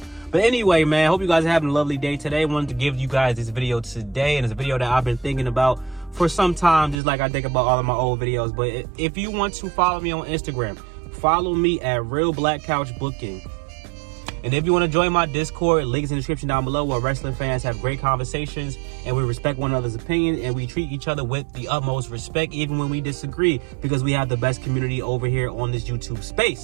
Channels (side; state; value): left; drops out; at 7.0 s